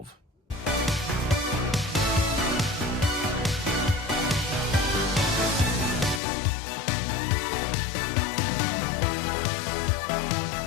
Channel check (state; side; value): drops out; right; at 6.2 s